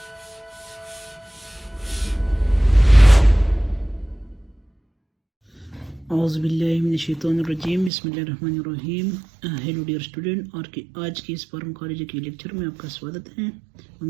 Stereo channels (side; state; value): left; drops out; at 7.9 s